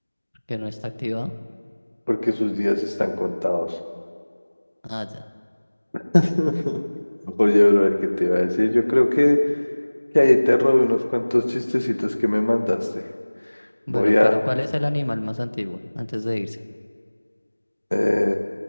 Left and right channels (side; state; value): both; inverted; correlation -1.00